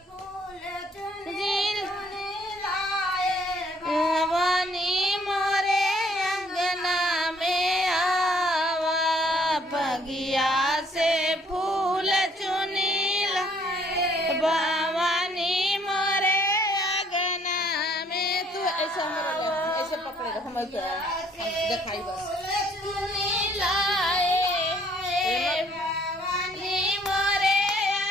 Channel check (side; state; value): both; normal; correlation 0.63